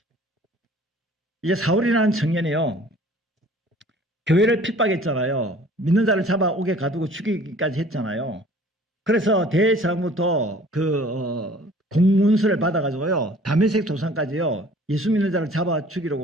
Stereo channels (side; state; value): both; normal; correlation 0.51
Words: 이제 사울이라는 청년이요. 교회를 핍박했잖아요. 믿는 자를 잡아오게 가두고 죽이기까지 했잖아요. 그래서 대제사장부터 공문서를 받아가지고요. 다메섹 도상까지요. 예수 믿는 자를 잡아